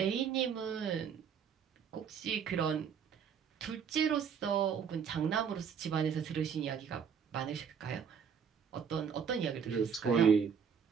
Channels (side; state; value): left; quieter; 7.1 dB